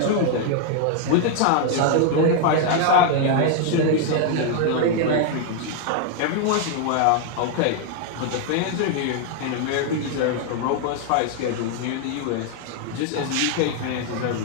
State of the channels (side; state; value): both; different; correlation 0.00